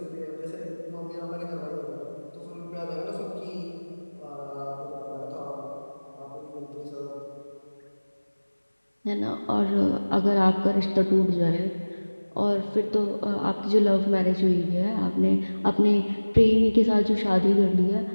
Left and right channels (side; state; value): both; inverted; correlation -1.00